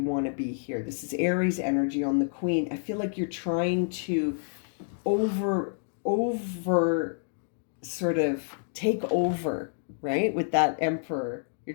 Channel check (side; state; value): right; silent; digital silence